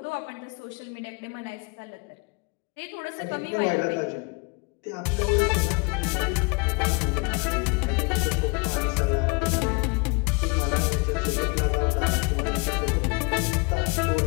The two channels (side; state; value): right; quieter; 31.1 dB